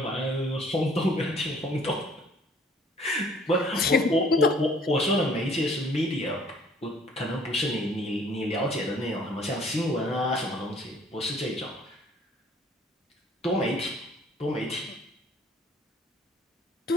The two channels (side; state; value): both; normal; correlation 0.57